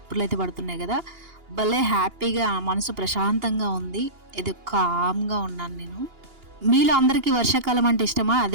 అయితే పడుతున్నాయి కదా, భలే హ్యాపీగా మనసు ప్రశాంతంగా ఉంది. ఇది కామ్గా ఉన్నాను నేను. మీలో అందరికీ వర్షాకాలం అంటే ఇష్టమా,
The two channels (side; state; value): left; late; 2.8 ms